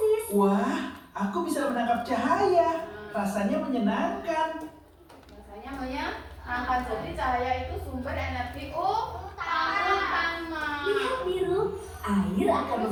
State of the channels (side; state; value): both; identical; correlation 1.00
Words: Wah, aku bisa menangkap cahaya. Rasanya menyenangkan. Rasanya menyenangkan. Jadi cahaya itu sumber energi utama. Lihat biru, air akan